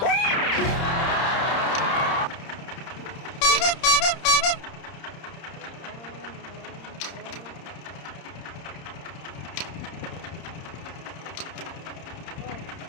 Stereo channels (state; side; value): late; right; 30 ms